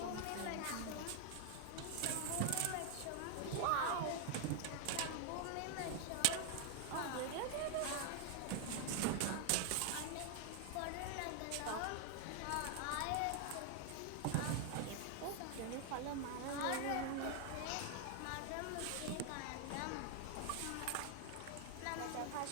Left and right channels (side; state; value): both; different; correlation 0.00